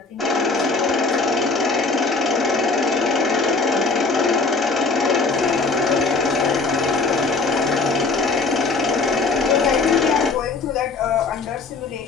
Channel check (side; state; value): right; quieter; 4.0 dB